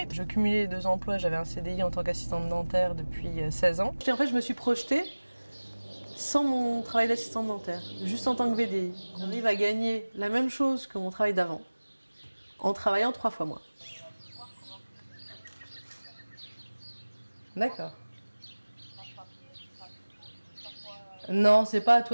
Je cumulais les 2 emplois, j'avais un CDI en tant qu'assistante dentaire depuis 16 ans. Et en fait je me suis projetée sans mon travail d'assistante dentaire, juste en tant que VDI. On arrive à gagner la même chose que mon travail d'avant, en travaillant 3 fois moins. D'accord. Non, c'est pas à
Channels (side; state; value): both; inverted; correlation -1.00